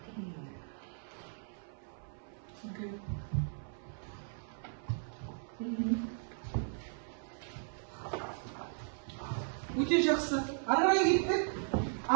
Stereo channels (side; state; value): left; silent; 53 dB below the other